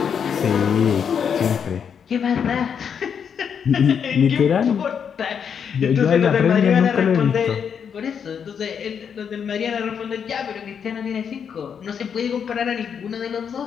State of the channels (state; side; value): quieter; right; 7.3 dB